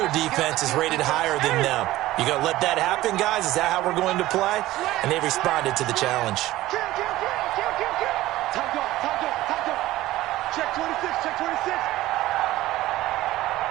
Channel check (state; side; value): quieter; left; 16.4 dB